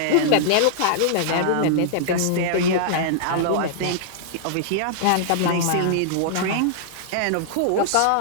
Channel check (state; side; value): different; both; correlation -0.01